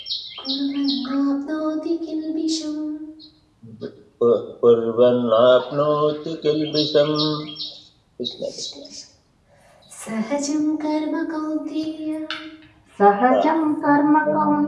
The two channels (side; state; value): both; identical; correlation 1.00